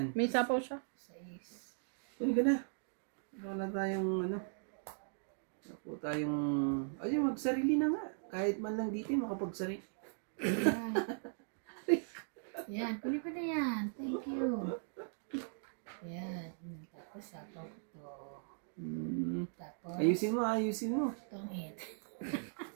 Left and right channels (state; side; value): silent; left; digital silence